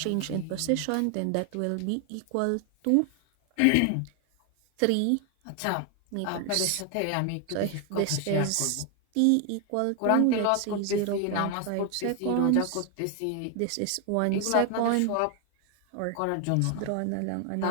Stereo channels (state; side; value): different; both; correlation 0.00